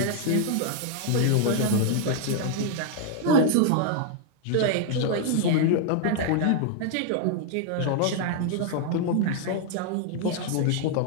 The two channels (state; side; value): different; both; correlation 0.00